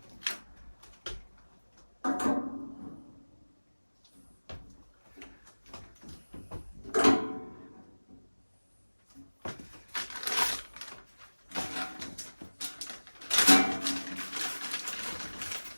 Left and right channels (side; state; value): both; inverted; correlation -1.00